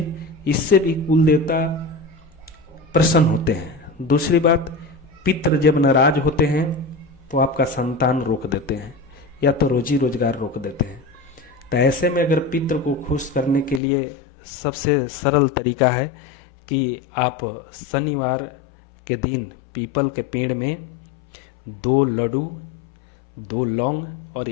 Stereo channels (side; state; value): right; drops out; at 13.8 s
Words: इससे भी कुल देवता प्रसन्न होते हैं। दूसरी बात, पितृ जब नाराज होते हैं तो आपका संतान रोक देते हैं या तो रोजी रोजगार रोक देते हैं। तो ऐसे में अगर पितृ को खुश करने के लिए सबसे सरल तरीका है कि आप शनिवार के दिन पीपल के पेड़ में 2 लड्डू, 2 लौंग और